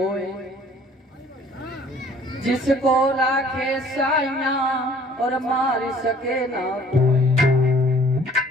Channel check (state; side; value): normal; both; correlation 0.54